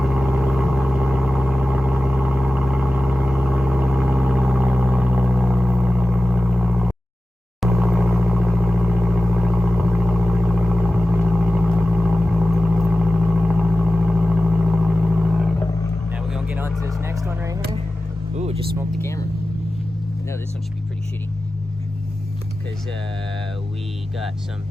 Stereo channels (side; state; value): both; normal; correlation 0.96